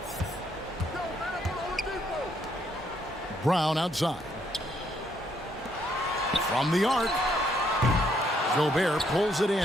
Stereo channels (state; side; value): normal; both; correlation 0.71